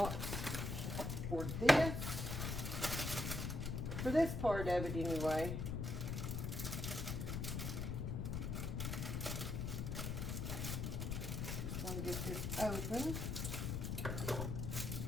for this part of it anyway. Just want to get this open.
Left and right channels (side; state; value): left; noise; rumble, 1 dB below the sound